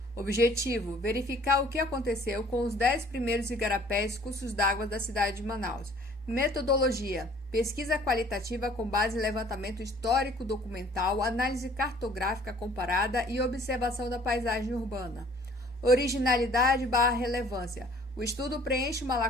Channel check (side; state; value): both; normal; correlation 0.54